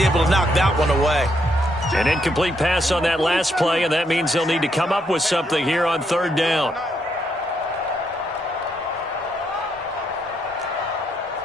to knock that one away. An incomplete pass on that last play, and that means they'll need to come up with something here on 3rd down.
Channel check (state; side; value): normal; both; correlation 0.76